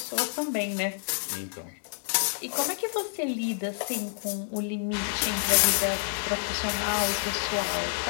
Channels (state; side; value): silent; right; 59 dB below the other